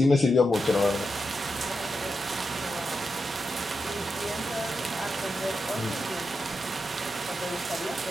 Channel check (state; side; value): normal; both; correlation 0.87